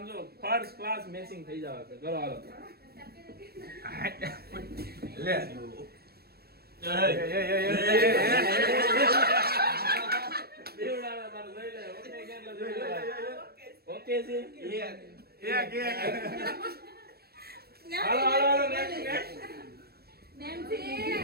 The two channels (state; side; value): late; left; 0.46 ms